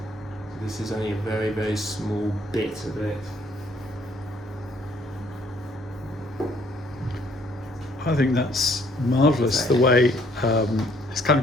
So this is only a very, very small bit of it. I think that's marvellous, the way it's kind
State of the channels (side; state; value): both; normal; correlation 0.63